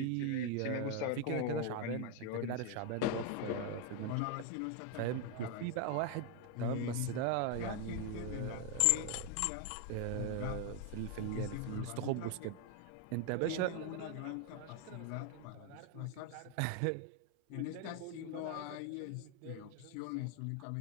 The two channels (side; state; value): both; different; correlation 0.01